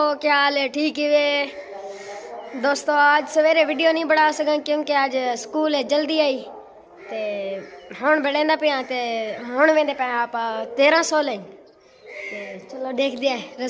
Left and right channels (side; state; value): both; identical; correlation 1.00